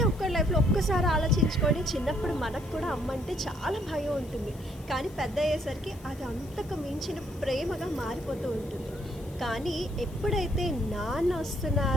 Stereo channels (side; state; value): left; noise; hiss, 24 dB below the sound